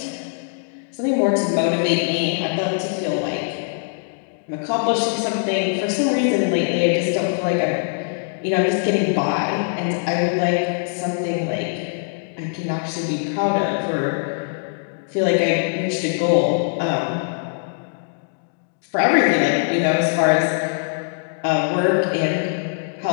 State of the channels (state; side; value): silent; right; digital silence